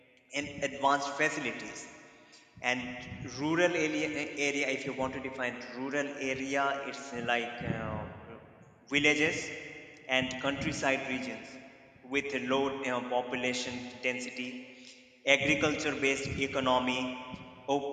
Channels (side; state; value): both; identical; correlation 1.00